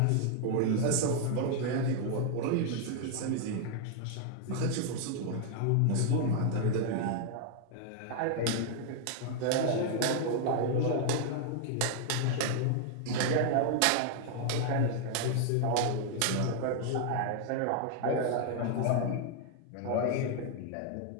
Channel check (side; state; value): both; different; correlation 0.00